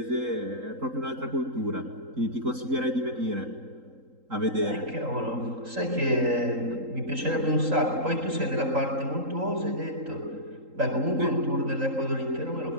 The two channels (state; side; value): late; left; 3.8 ms